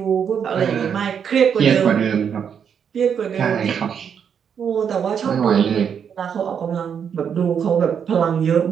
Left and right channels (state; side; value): quieter; left; 7.6 dB